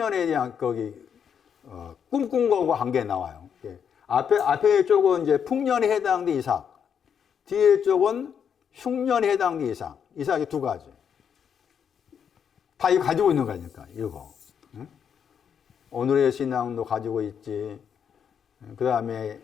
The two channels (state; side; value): quieter; right; 7.7 dB